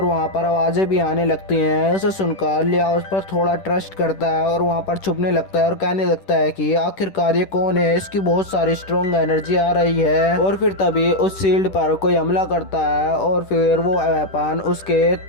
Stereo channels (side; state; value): right; late; 10 ms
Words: वहाँ पर आवाजें भी आने लगती हैं। उसे सुनकर लियाओ उस पर थोड़ा ट्रस्ट करता है और वहाँ पर छुपने लगता है और कहने लगता है कि आखिरकार ये कौन है, इसकी बहुत सारी स्ट्रॉन्ग एनर्जी आ रही है। और फिर तभी उस शील्ड पर कोई हमला करता है और फिर वो वेपन उसके